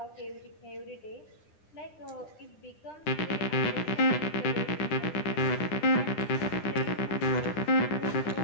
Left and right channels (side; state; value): right; late; 9.9 ms